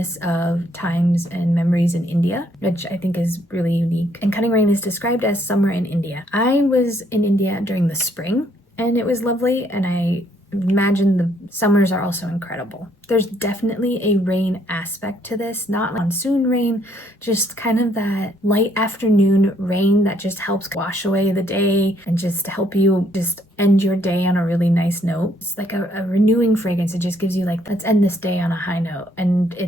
of times and memories in India, which I think is really unique. And Cutting Rain is described as summer in India. I was in India during the spring and it was lovely, and I imagine the summers are also incredible. There's definitely a rain aspect to this, not monsoon rain, just kind of that light afternoon rain that just helps wash away the day and just help you just end your day on a really nice note. It's like a renewing fragrance. It just gives you like, let's end this day on a high note. And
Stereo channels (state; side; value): normal; both; correlation 0.68